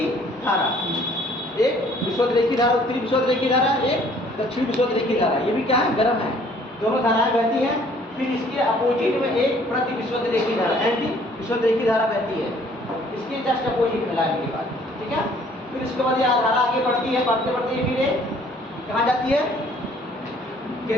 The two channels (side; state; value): both; normal; correlation 0.58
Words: धारा। एक विषुवत रेखी धारा, उत्तरी विषुवत रेखी धारा, एक दक्षिण विषुवत रेखी धारा। ये भी क्या है? गर्म है, दोनों धाराएं बहती हैं। फिर इसके अपोजिट में एक प्रति विषुवत रेखी धारा, एंटी विषुवत रेखी धारा बहती है, इसके जस्ट अपोजिट में लाने के बाद। ठीक है, फिर इसके बाद ये धारा आगे बढ़ती है, बढ़ते बढ़ते फिर ये कहाँ जाती है?